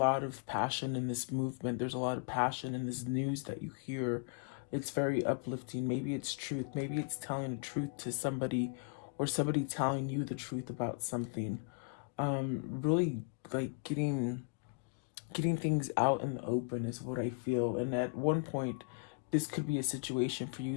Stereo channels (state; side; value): quieter; right; 38.2 dB